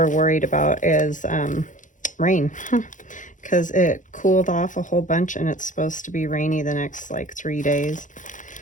worried about is rain, because it cooled off a whole bunch, and it's supposed to be rainy the next like 3 days.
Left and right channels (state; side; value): late; right; 0.37 ms